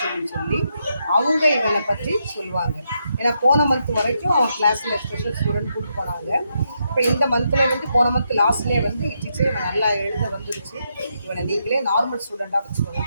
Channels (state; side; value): inverted; both; correlation -0.81